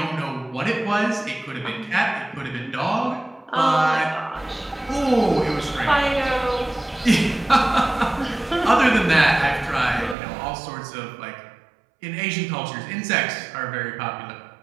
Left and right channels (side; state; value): left; drops out; at 10.2 s